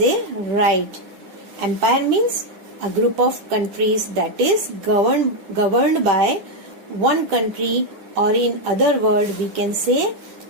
right. Empire means a group of countries that is governed by one country, or in other word we can say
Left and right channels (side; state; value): left; late; 10 ms